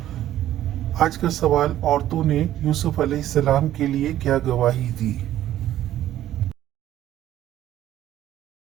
آج کا سوال، عورتوں نے یوسف علیہ السلام کے لیے کیا گواہی دی؟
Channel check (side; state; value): left; quieter; 12.8 dB